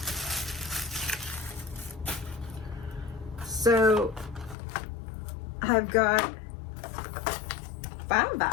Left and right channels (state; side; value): drops out; right; at 4.5 s